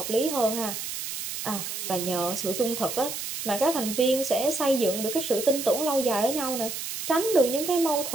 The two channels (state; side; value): noise; right; hiss, 6 dB below the sound